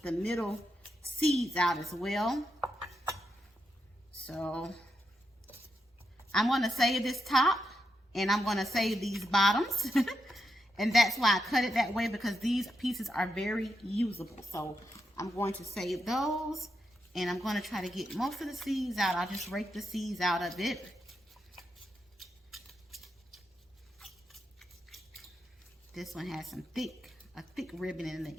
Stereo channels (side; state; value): both; normal; correlation 0.84